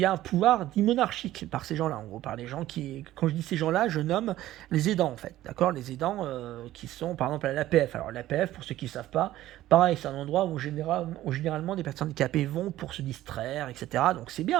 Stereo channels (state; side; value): quieter; left; 14.6 dB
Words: a un pouvoir dit monarchique par ces gens-là, en gros, par les gens qui, quand je dis ces gens-là, je nomme les aidants, en fait, d'accord, les aidants qui sont, par exemple, à l'APF. Alors l'APF, pour ceux qui ne savent pas, pareil, c'est un endroit où généralement des personnes handicapées vont pour se distraire, etc. Donc c'est